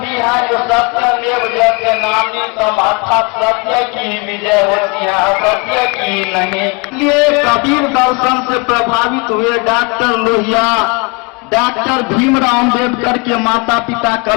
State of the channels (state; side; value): quieter; right; 30.1 dB